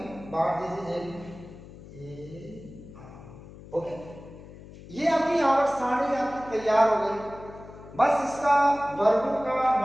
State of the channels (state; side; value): noise; left; hum, 17 dB below the sound